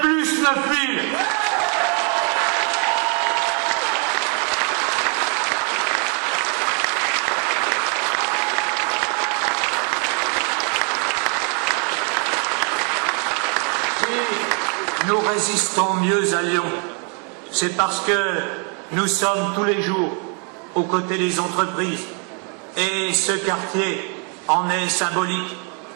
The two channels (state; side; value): quieter; left; 38.1 dB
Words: plus 9 000. Nous résistons mieux à Lyon, c'est parce que nous sommes tous les jours aux côtés des entreprises et ce quartier en est symbolique.